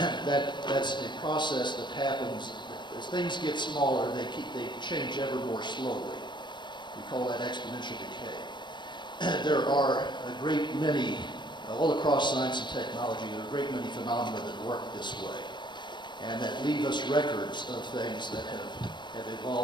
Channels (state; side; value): late; right; 0.22 ms